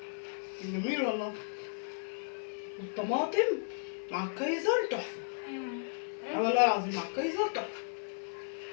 جميل والله. الطماطم مع الكايزر تحفه. والله العظيم مع الكايزر تحفه.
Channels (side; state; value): right; silent; 55 dB below the other